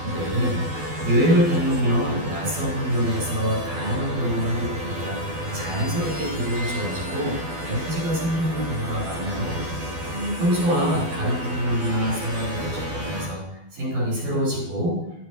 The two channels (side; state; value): left; late; 12 ms